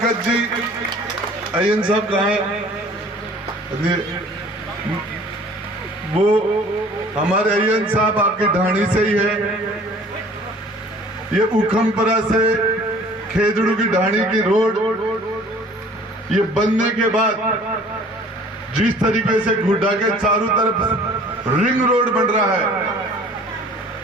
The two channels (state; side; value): normal; both; correlation 0.50